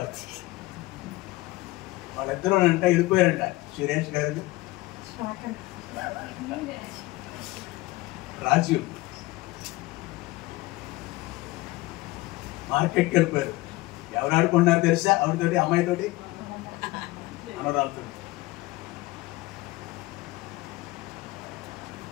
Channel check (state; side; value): quieter; right; 20.0 dB